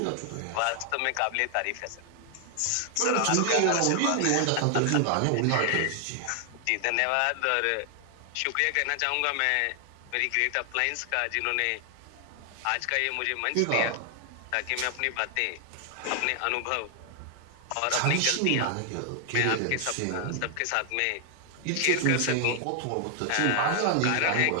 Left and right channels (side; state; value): both; different; correlation 0.00